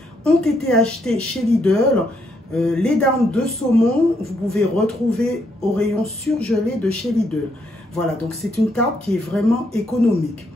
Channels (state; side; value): normal; both; correlation 0.75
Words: ont été achetés chez Lidl. Les darnes de saumon, vous pouvez retrouver au rayon surgelé de chez Lidl. Voilà, donc c'est une tarte qui est vraiment économique.